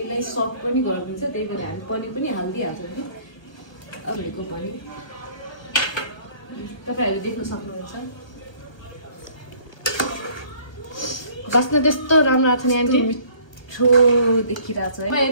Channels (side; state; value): right; late; 1.2 ms